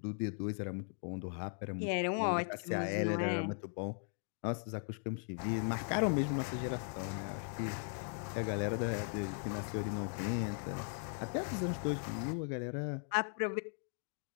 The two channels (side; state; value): right; silent; 52 dB below the other